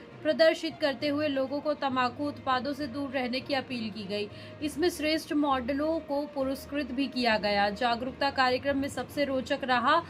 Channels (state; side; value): identical; both; correlation 1.00